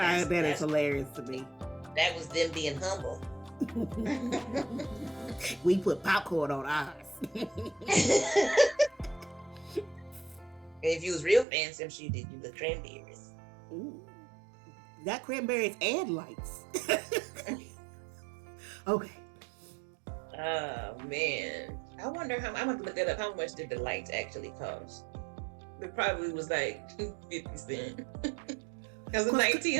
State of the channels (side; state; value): left; drops out; at 11.5 s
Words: is hilarious to me. That was them being humble. We put popcorn on ours. If you was real fancy, I'm sure you did you the cranberries. Ooh. Got cranberries and lights. Okay. Oh man. I wonder I'm gonna look that up. How much did the lights actually cost? It probably was like 50 cents. Because in